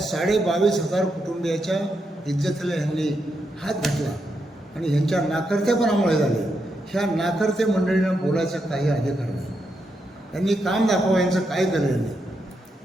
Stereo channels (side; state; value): both; normal; correlation 0.83